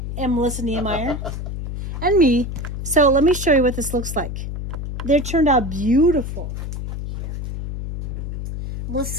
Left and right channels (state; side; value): noise; left; hum, 5 dB below the sound